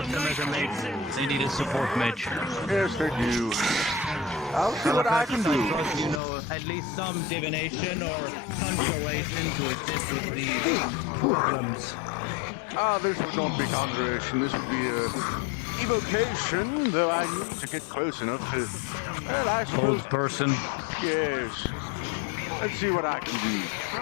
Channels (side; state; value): right; drops out; at 6.2 s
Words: them as a mage. They need a support mage. Yes, they do. I'll see what I can do. You know, at least some divination or conjuration to assist with these problems. This would not be conjuration. This would be a evocation, though I need to get close enough to... Well, I suppose... Old person. Yes. Let's see what I can do.